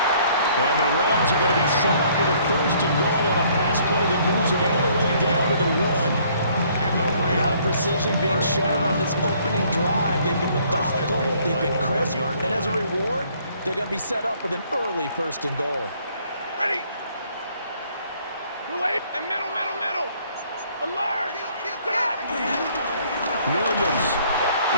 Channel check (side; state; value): both; inverted; correlation -0.62